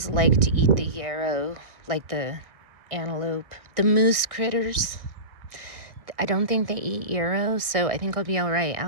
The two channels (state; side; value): late; left; 1.6 ms